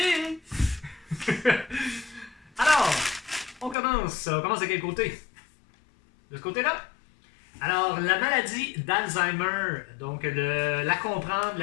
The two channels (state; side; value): drops out; right; at 3.8 s